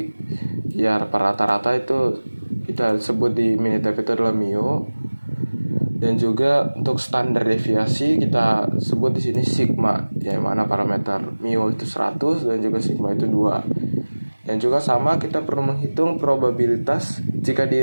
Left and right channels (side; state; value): both; inverted; correlation -1.00